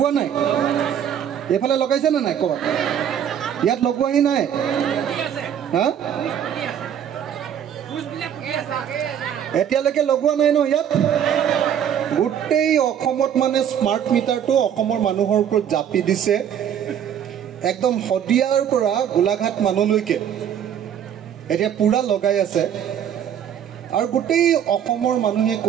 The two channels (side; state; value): left; quieter; 9.2 dB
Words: If a location and I call yet Loquina. Huh? Etialake Loquana no yet. Good day or commot man smart meter to or common Manuhor could Japi dise. একদম হদিয়াৰ পৰা গোলাঘাট মানলৈকে এতিয়া পুৰা লগাই আছে আৰু গোটেই অসমৰ মানুহে